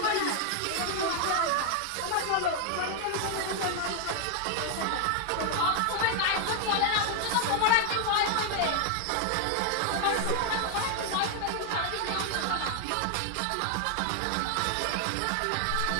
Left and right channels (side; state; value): both; different; correlation 0.00